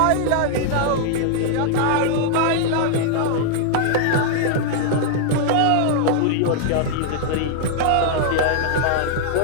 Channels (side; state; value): both; different; correlation -0.01